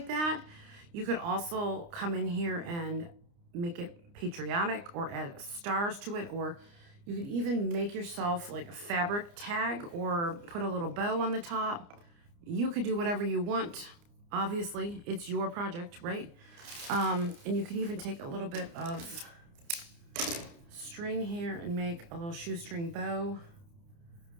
that. You could also come in here and make it patriotic or add stars to it, or you could even make yourself like a fabric tag or put a little bow on the top. You could do whatever you want. Obviously, it's your project, right? And you could even take a little bit of string here and make a little shoestring bow.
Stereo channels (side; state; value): left; late; 29 ms